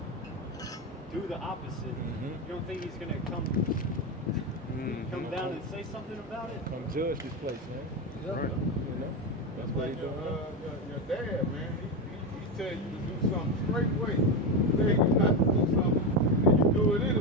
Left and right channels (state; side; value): normal; both; correlation 0.14